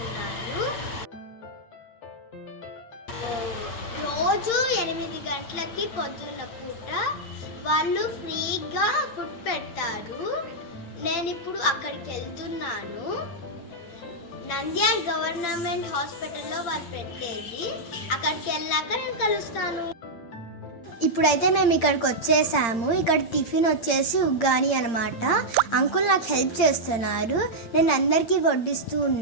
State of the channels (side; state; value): right; late; 8.7 ms